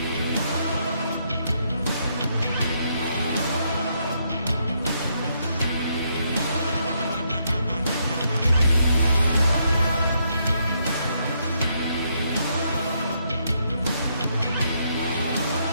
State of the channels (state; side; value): inverted; both; correlation -0.75